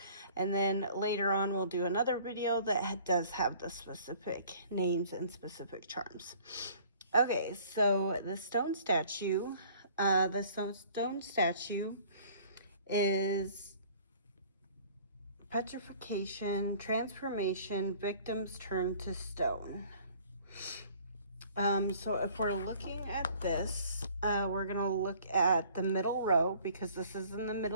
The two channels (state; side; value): inverted; both; correlation -0.53